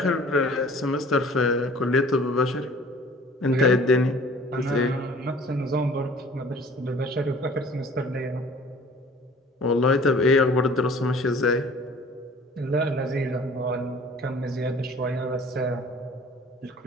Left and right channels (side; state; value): both; normal; correlation 0.49